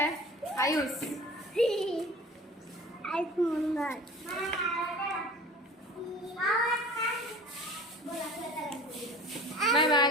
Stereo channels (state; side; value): normal; both; correlation 0.41